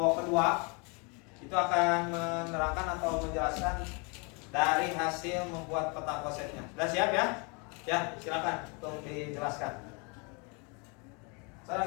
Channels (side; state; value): right; quieter; 32.4 dB